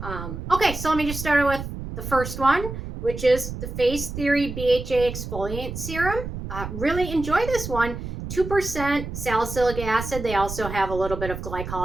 Okay, so let me just start with the first one, which is the FaceTheory BHA Exfoliant Serum. Really enjoy this one. 2% salicylic acid. They also have a little bit of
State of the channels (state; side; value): noise; right; rumble, 8 dB below the sound